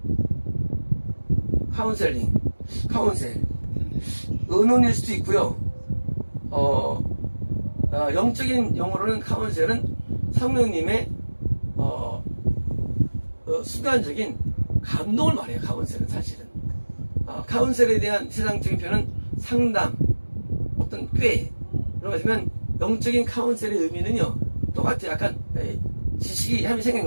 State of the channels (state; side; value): inverted; both; correlation -1.00